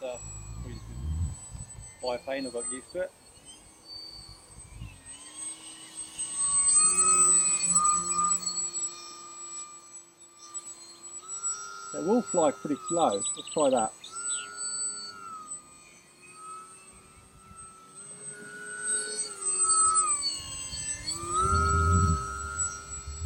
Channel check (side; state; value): both; identical; correlation 1.00